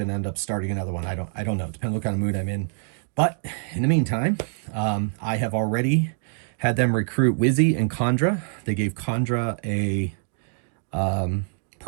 end up starting another one. I don't know. It depends what kind of mood I'm in. But in the meantime, I have already had them recruit Wizzy and Kandra. They gave Kandra a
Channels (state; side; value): silent; left; digital silence